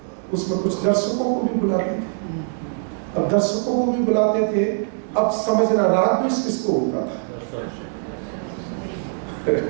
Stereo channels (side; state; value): left; silent; 64 dB below the other